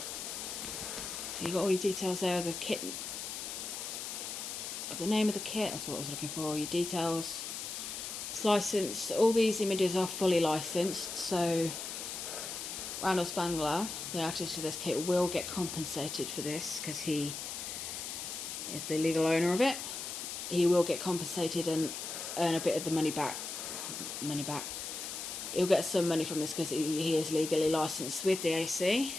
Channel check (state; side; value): noise; left; hiss, 6 dB below the sound